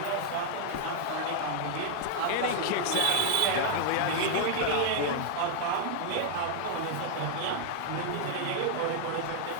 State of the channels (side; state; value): both; different; correlation 0.00